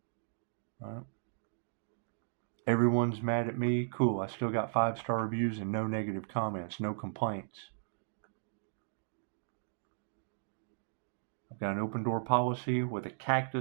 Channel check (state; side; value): silent; left; digital silence